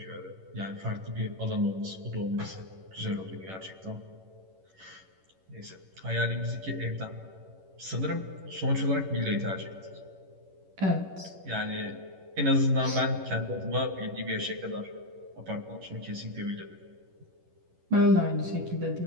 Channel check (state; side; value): late; left; 11 ms